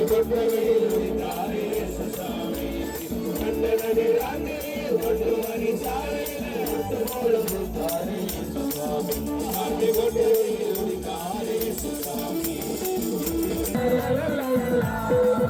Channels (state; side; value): identical; both; correlation 1.00